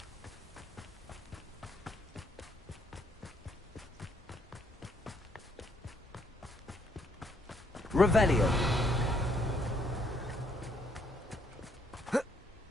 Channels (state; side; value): normal; both; correlation 0.70